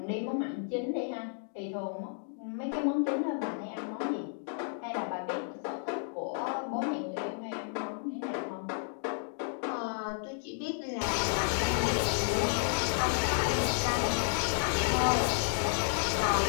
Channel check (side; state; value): right; silent; 56 dB below the other